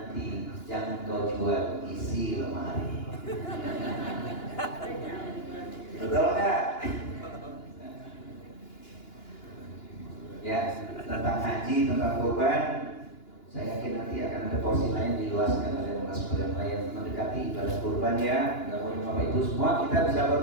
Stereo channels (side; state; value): right; late; 2.9 ms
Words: jangan kau jual isi lemari. Betul nggak? Ya, tentang haji, tentang kurban, saya yakin nanti akan ada porsi lain diluaskan oleh narasumber yang lain mendekati ibadah kurban ya. Mudah-mudahan Bapak Ibu semua kita bisa